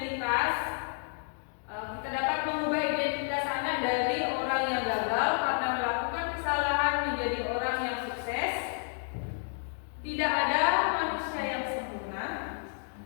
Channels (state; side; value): silent; right; 57 dB below the other